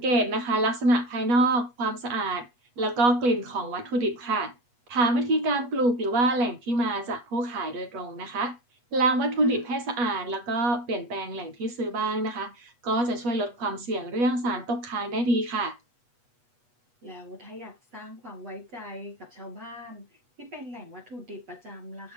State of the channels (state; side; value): late; left; 8.2 ms